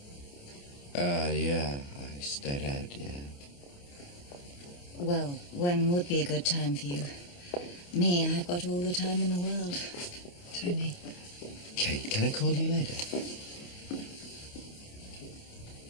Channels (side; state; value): right; late; 28 ms